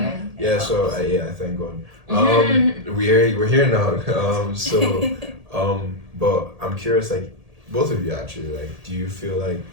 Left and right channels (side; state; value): left; late; 1.8 ms